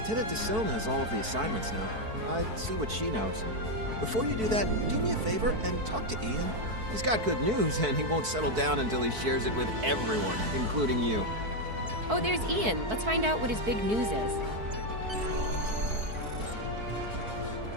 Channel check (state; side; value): late; left; 4.6 ms